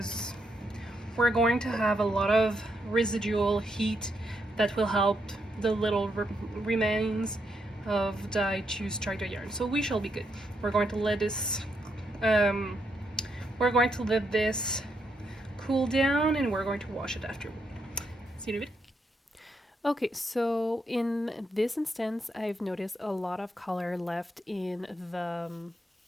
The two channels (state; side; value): normal; both; correlation 0.79